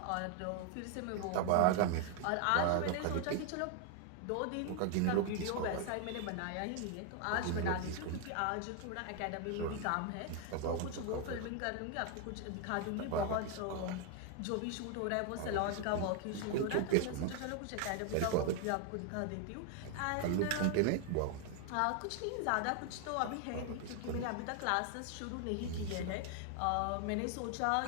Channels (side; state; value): both; different; correlation 0.00